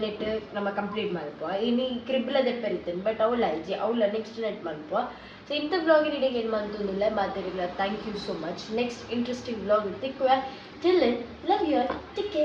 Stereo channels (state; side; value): identical; both; correlation 1.00